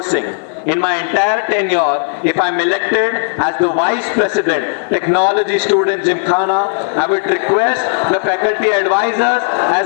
In my entire tenure, if I'm elected as the Vice President, Technology Student Gymkhana, I would request the faculty advisors as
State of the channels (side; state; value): right; silent; 57 dB below the other